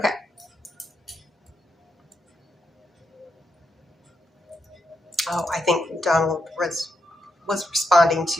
Oh, I think Donald was responding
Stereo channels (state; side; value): normal; both; correlation 0.83